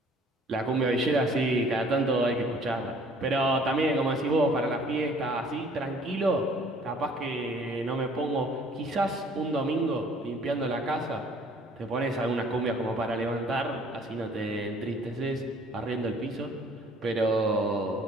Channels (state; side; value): normal; both; correlation 0.56